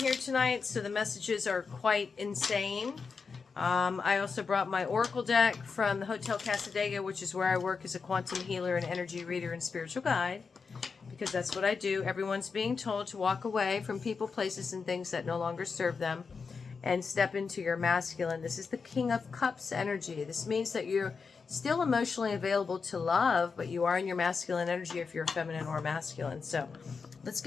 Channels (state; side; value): quieter; right; 5.1 dB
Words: tonight, so the messages are quite insane. I also brought my Oracle deck from the Hotel Casadega, which is where I work as a quantum healer and energy reader and spiritual guide, because that's what I do. Everyone's being told to walk away from people, places, and things that no longer serve them, and step into your masculine. This is the King of Cups energy. This means that you're still emotionally available to love, but you are in your masculine energy if you're feminine or masculine. So let's